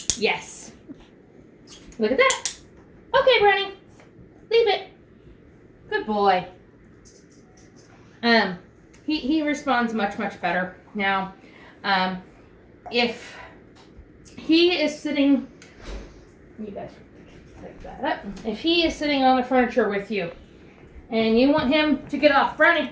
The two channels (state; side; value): identical; both; correlation 1.00